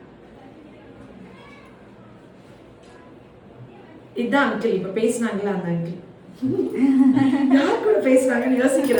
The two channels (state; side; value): identical; both; correlation 1.00